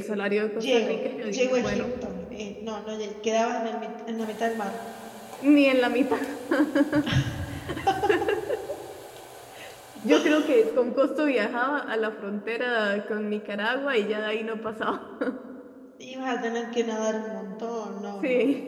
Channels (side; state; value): both; identical; correlation 1.00